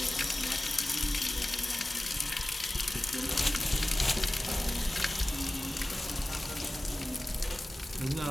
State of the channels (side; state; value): both; normal; correlation 0.97